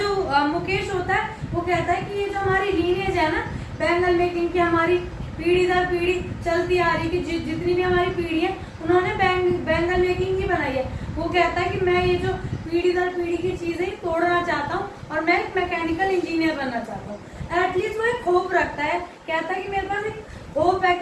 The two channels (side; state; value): both; identical; correlation 1.00